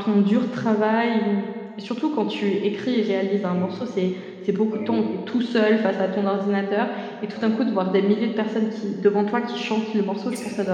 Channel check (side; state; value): both; identical; correlation 1.00